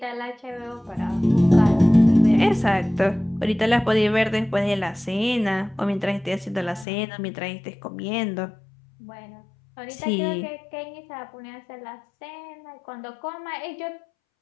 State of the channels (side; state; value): right; drops out; at 6.9 s